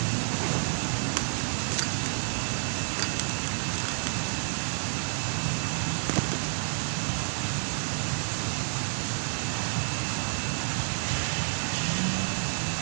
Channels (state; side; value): silent; left; digital silence